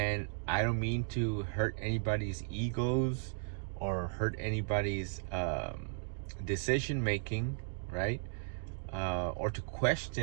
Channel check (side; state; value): left; silent; digital silence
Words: I don't mean to hurt anybody's egos or hurt anybody's decision making, right? Or to